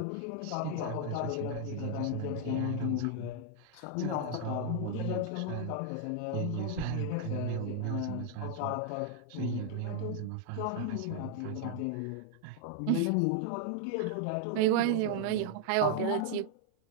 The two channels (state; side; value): different; both; correlation 0.00